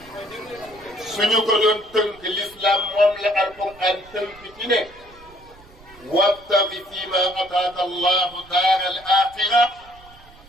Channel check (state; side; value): noise; right; rumble, 24 dB below the sound